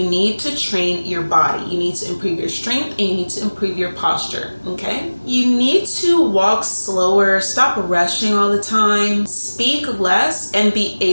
need to train your body. You need to improve your strength and you need to improve your posture, okay? You need to walk slower, stop rushing all the time, speak less, and be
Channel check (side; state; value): both; inverted; correlation -1.00